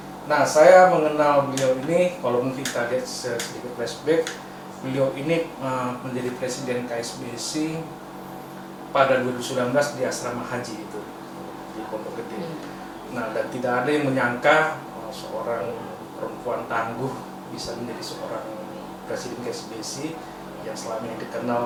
Nah, saya mengenal beliau ini, kalau mungkin kita lihat sedikit flashback, beliau ini menjadi presiden KSBC pada 2019 di asrama haji itu di Pondok Gede. Nah, dan tidak ada yang menyangka seorang perempuan tangguh bisa menjadi seorang presiden KSBC yang selama ini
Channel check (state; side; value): identical; both; correlation 1.00